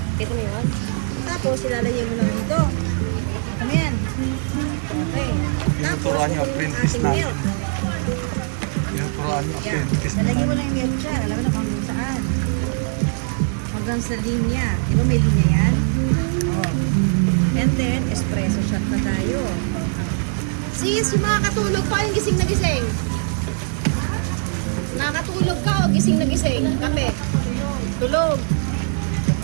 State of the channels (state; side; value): silent; left; 64 dB below the other